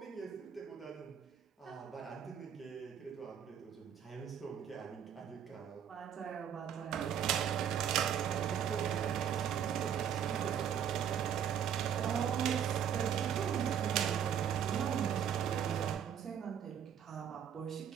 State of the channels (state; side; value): quieter; left; 8.8 dB